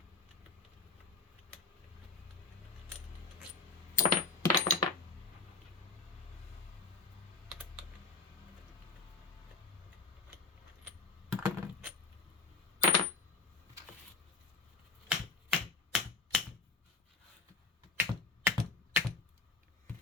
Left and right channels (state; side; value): quieter; right; 3.9 dB